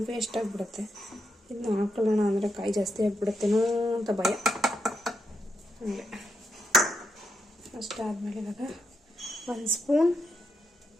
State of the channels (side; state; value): both; normal; correlation 0.82